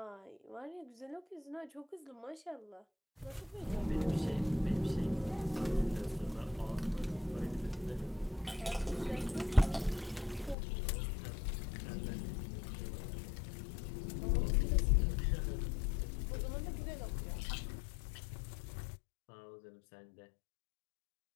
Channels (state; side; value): drops out; right; at 10.6 s